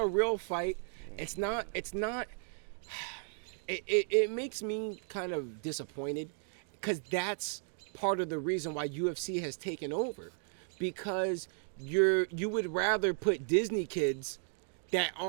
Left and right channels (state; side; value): silent; left; 55 dB below the other